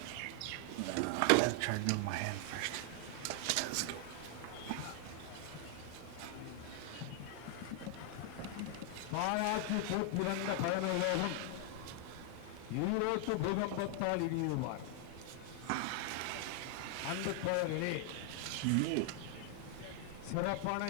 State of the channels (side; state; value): both; different; correlation 0.00